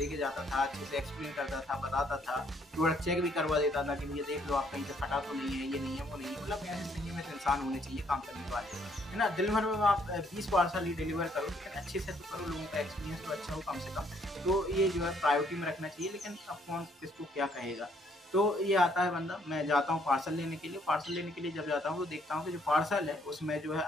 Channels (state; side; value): normal; both; correlation 0.67